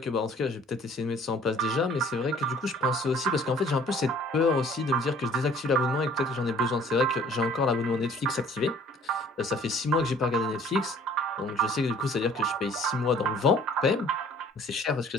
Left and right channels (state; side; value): normal; both; correlation 0.54